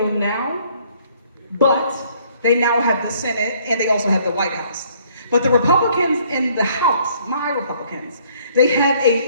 now, but they now have the Senate and they also have the White House. But the Republicans in the House, my Republicans, they have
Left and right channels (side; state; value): both; inverted; correlation -0.62